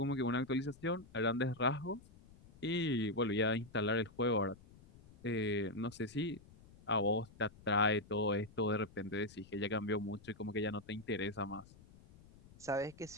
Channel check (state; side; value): noise; left; rumble, 23 dB below the sound